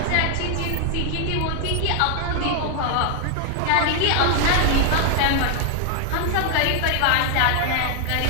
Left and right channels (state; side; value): different; both; correlation 0.00